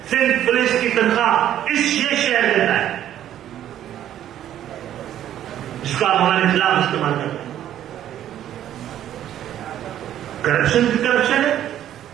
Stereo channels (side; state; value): left; quieter; 11.5 dB